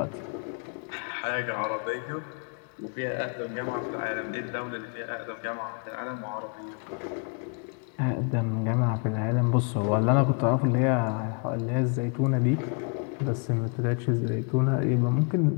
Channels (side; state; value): right; quieter; 38.5 dB